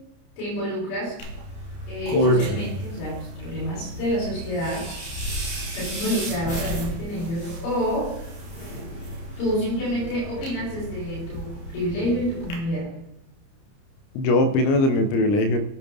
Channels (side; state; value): right; late; 30 ms